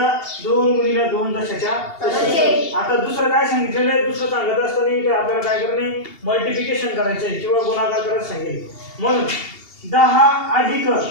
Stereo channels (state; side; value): late; right; 2.8 ms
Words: 2 गुणिले 2 दशाच्या तसे. आता दुसरं काय सांगितलेलं आहे दुसरं सांगत असताना इथे आपल्याला काय करणे मल्टिप्लिकेशन करायचं आहे किंवा गुणाकार करायला सांगेल. म्हणून 10 अधिक